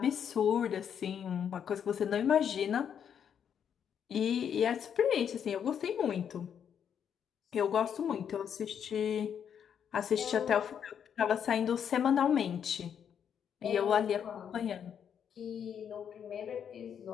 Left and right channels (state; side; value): quieter; right; 8.2 dB